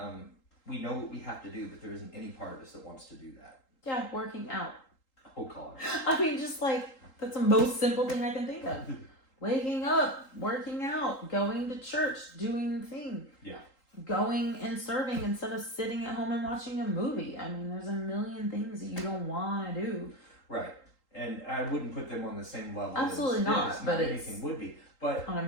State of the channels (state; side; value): late; right; 3.8 ms